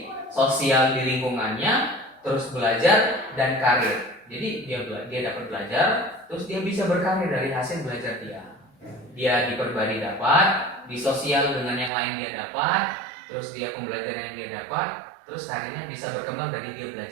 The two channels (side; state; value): left; drops out; at 11.9 s